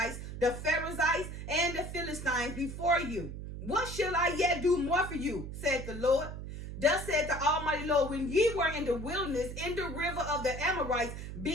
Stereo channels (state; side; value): noise; right; hum, 8 dB below the sound